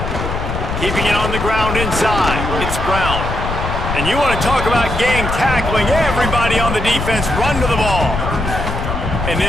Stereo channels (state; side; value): noise; left; rumble, 4 dB below the sound